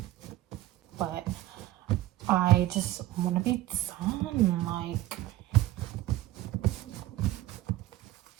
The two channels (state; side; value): quieter; left; 15.7 dB